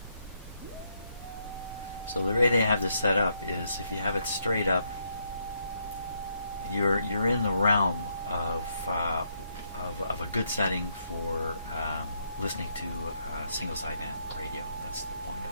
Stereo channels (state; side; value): inverted; both; correlation -0.76